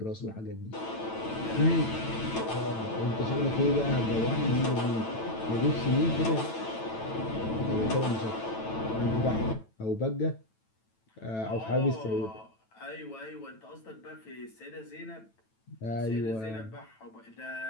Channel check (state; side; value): late; right; 9.0 ms